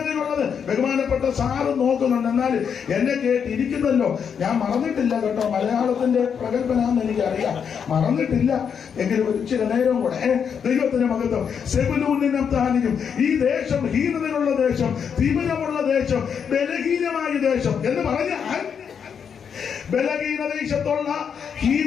ബഹുമാനപ്പെട്ട സാറ് നോക്കുന്നുണ്ട്. എന്നാൽ എന്നെ കേട്ടിരിക്കുന്നല്ലോ. ഞാൻ മറന്നിട്ടില്ല കേട്ടോ. മലയാളത്തിന്റെ പ്രഗത്ഭനാന്ന് എനിക്കറിയാം, മറന്നിട്ടില്ല. എങ്കിലും ഒരു ചില നേരം കൂടെ ദൈവത്തിന് മഹത്വം. സെബൂലൂനും നഫ്താലിയും ഈ ദേശം ഹീനതയുള്ള ദേശം, തിമിരമുള്ള ദേശം, ബലഹീനമായ ദേശം എന്ന് പറഞ്ഞാൽ ബലഹീന ദേശത്തുള്ള,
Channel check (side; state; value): right; quieter; 7.2 dB